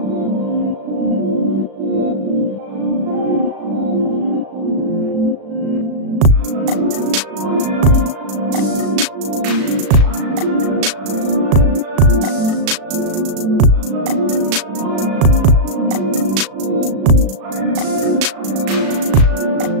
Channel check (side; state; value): left; late; 36 ms